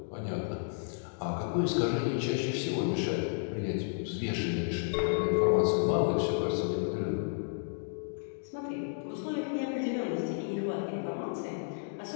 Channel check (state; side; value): silent; right; digital silence